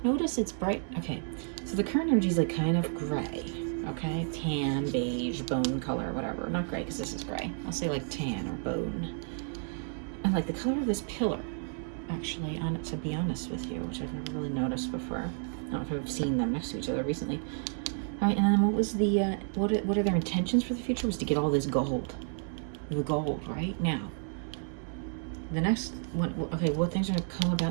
Notice it's bright. Okay, so the current energy is like kind of gray. Okay, tan, beige, bone color, whatever. Not gray, because this is gray. I'll say like tan or bone. And like the color of this pillar, actually, to be honest with you, which I've never really noticed before. I don't know if I've seen them next to each other recently. All right, and then what was the, what are their intentions for the future? Was to get all this gold. The gold, right? Now, the next one, okay, what things are going to come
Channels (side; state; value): left; silent; 57 dB below the other